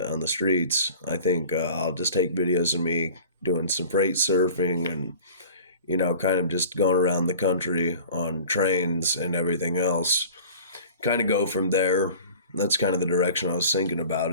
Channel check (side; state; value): both; inverted; correlation -0.42